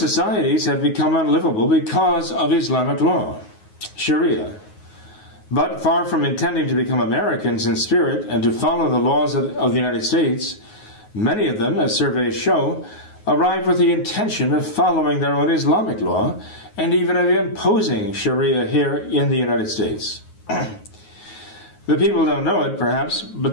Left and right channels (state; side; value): late; right; 9.4 ms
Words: have become unlivable because of Islamic law, Sharia. But far from intending to become Americans in spirit and to follow the laws of the United States, many of them, as surveys show, arrive with the intention of following their own Islamic law and even of imposing Sharia here in the United States. The people don't know it, perhaps,